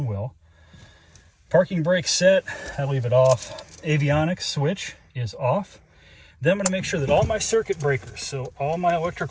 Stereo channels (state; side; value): identical; both; correlation 1.00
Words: will. Parking brake set, I leave it off. Avionics switch is off. Then I'm going to make sure that all my circuit breakers, so all my